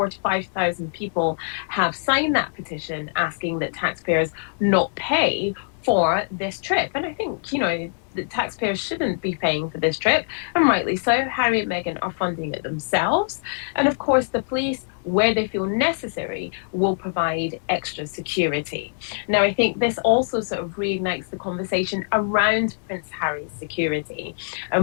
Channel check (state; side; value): silent; right; digital silence